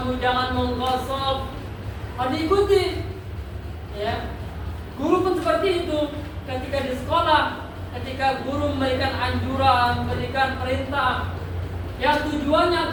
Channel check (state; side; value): identical; both; correlation 1.00